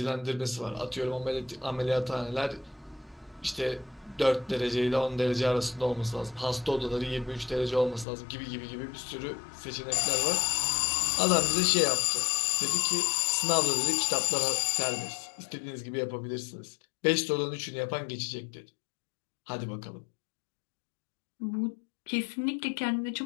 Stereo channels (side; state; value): right; drops out; at 8.1 s